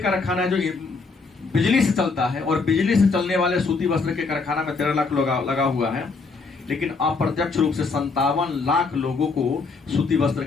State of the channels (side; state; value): right; quieter; 4.3 dB